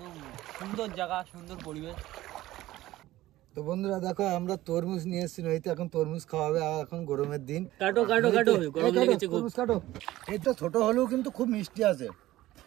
সুন্দর জায়গা, সুন্দর পরিবেশ। তো বন্ধুরা দেখো, আমরা তরমুজ নিয়ে এসেছি নইতে, এখন তরমুজ খাওয়াবে। আর এখন গরমের দিন, কাটো কাটো কাটো, গরম লেগেছে খুব। তরমুজ কাটো। এই তো ছোট হলেও কিন্তু খুব মিষ্টি আছে,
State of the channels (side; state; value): left; quieter; 16.0 dB